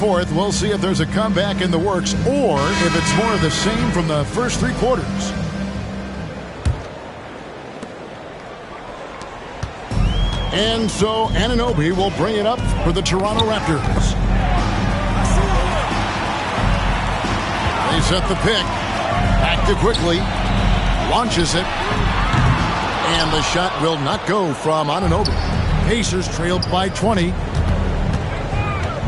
we'll see if there's a comeback in the works or if it's more of the same from the first 3 quarters. And so Anunoby will bring it up for the Toronto Raptors. They set the pick. Back to quickly. Launches it. And the shot will not go from Anunoby. Pacers trailed by 20.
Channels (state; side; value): identical; both; correlation 1.00